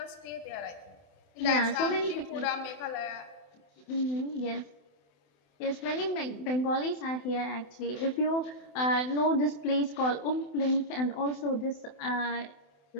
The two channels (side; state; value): right; late; 27 ms